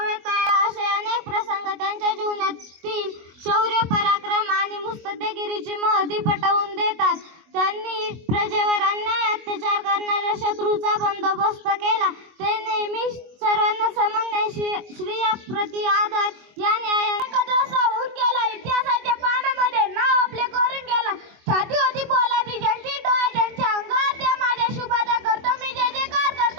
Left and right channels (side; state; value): left; late; 24 ms